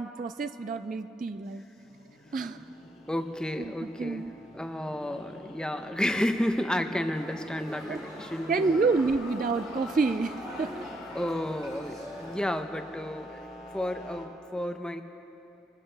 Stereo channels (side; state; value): both; normal; correlation 0.76